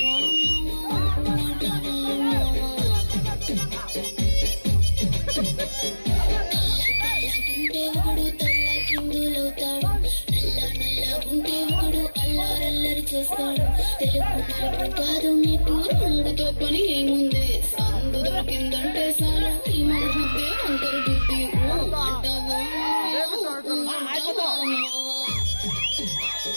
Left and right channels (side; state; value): both; inverted; correlation -1.00